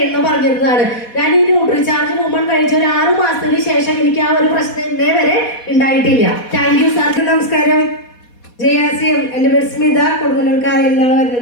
പറഞ്ഞിരുന്നതാണ്. ഞാൻ ഈ ന്യൂട്രിചാർജ് വുമൺ കഴിച്ച ഒരു 6 മാസത്തിന് ശേഷം എനിക്ക് ആ ഒരു പ്രശ്നം ഇന്നേ വരെ ഉണ്ടായിട്ടില്ല. Thank you sir. നമസ്കാരം. JRCM. എൻ്റെ പേര് സ്മിത, കൊടുങ്ങല്ലൂർക്കാരിൽ നിന്നാണ്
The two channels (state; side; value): late; right; 4.2 ms